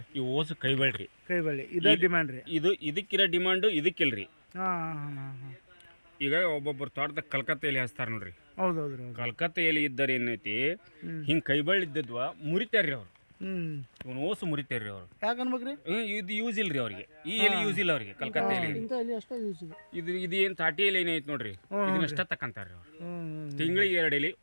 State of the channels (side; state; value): both; inverted; correlation -1.00